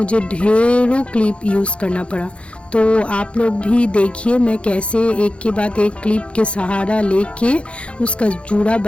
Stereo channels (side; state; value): right; late; 0.060 ms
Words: ढेरों क्लिप यूज़ करना पड़ा। तो आप लोग भी देखिए मैं कैसे एक के बाद एक क्लिप के सहारा लेके उसका जूड़ा